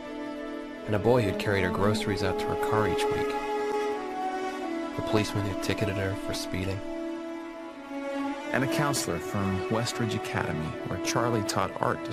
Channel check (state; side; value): identical; both; correlation 1.00